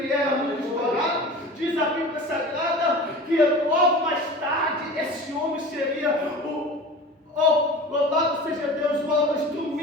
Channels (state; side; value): normal; both; correlation 0.36